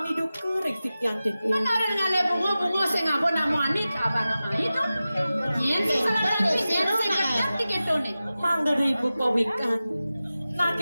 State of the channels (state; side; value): inverted; both; correlation -0.95